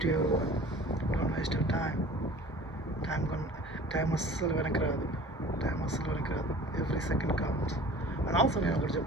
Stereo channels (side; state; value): both; normal; correlation 0.45